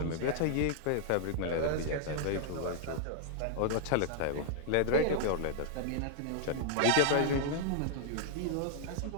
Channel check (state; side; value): different; both; correlation -0.01